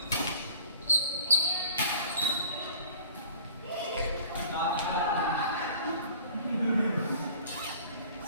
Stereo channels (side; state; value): both; inverted; correlation -0.47